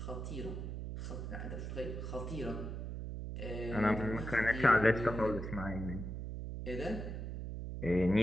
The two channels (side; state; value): right; noise; hum, 5 dB below the sound